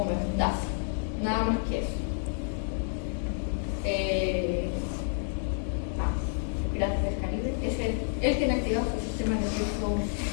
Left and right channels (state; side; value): silent; right; digital silence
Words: nada más que eso. Piratas del Caribe, él tiene activado su sistema nervioso